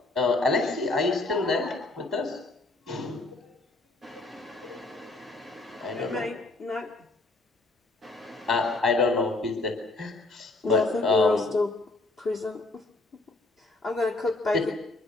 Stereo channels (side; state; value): right; quieter; 3.0 dB